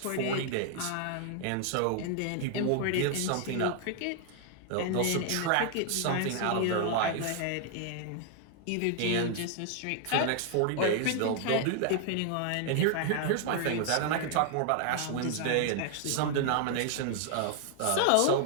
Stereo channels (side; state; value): both; different; correlation 0.00